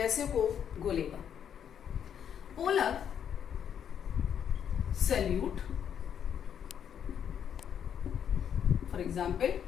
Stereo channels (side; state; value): right; quieter; 8.6 dB